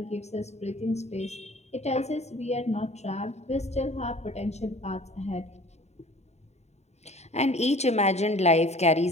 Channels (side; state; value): right; late; 0.32 ms